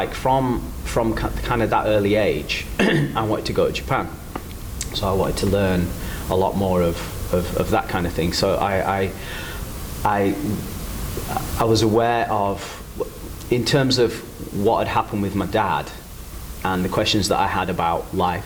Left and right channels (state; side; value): identical; both; correlation 1.00